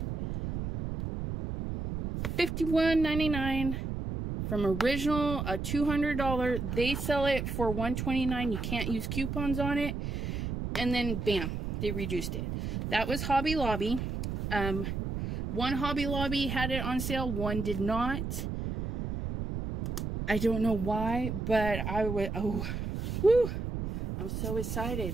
$51.99. From original, a $200, they sell it for $129. You can't use coupons on it. And then, bam, they reduced it. That was Hobby Lobby. One Hobby Lobby had it on sale, one did not. I don't know why, but I would, oh, whoo, I'm so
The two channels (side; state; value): right; noise; rumble, 4 dB below the sound